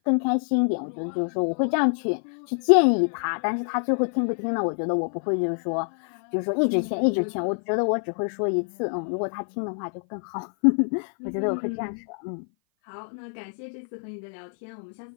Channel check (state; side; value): silent; right; 57 dB below the other